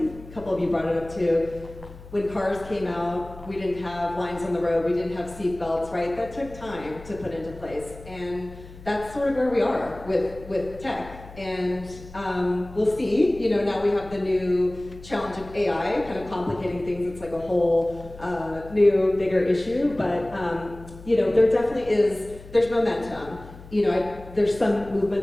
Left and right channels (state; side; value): noise; left; hum, 18 dB below the sound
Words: a couple of you brought it up too. When cars came out, we didn't have lines on the road, we didn't have seat belts, right? That took time to put into place. And that's sort of where we are with tech. And we'll see, now we have the new challenge of AI kind of complicating things. It's like a whole new, bigger issue, but there definitely there's momentum. There's some